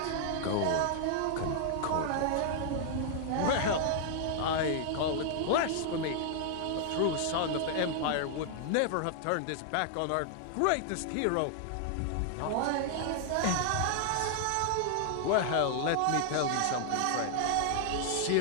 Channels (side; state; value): both; different; correlation 0.00